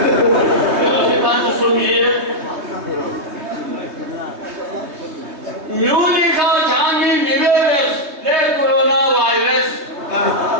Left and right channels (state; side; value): late; left; 3.2 ms